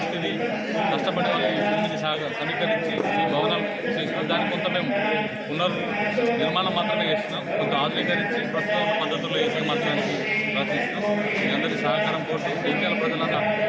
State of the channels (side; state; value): both; identical; correlation 1.00